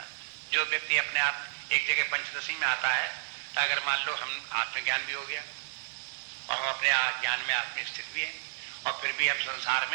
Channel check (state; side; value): silent; left; digital silence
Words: है? जो व्यक्ति अपने आप एक जगह पंचदशी में आता है, तो अगर मान लो हम आत्मज्ञान भी हो गया और हम अपने ज्ञान में आत्म स्थित भी है, और फिर भी हम संसार